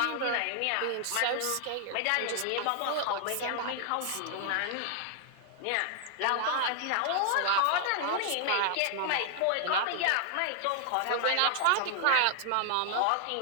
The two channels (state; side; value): different; both; correlation 0.00